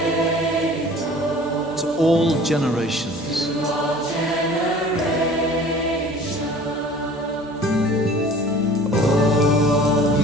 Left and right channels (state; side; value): normal; both; correlation 0.46